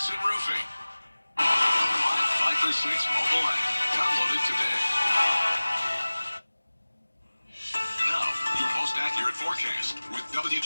Roofing. The live 5 for 6 mobile app. Download it today. Now, your most accurate accurate forecast with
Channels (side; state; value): both; inverted; correlation -1.00